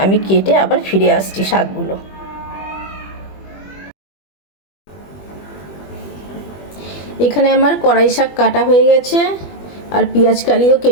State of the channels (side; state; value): right; late; 21 ms